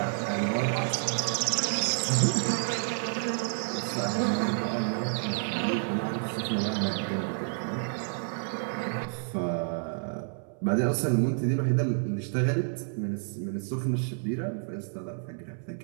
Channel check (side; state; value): left; silent; 58 dB below the other